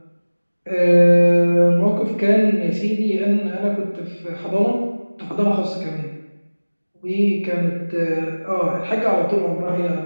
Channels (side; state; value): both; inverted; correlation -1.00